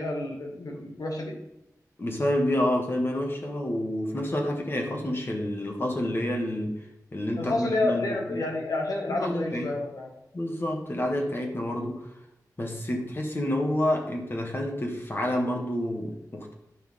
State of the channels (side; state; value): both; normal; correlation 0.87